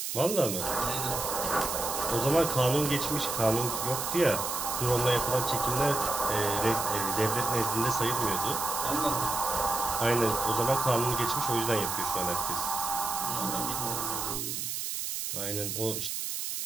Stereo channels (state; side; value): noise; right; hiss, 3 dB below the sound